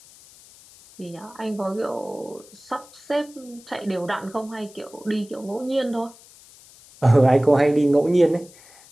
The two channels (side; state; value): left; noise; hiss, 23 dB below the sound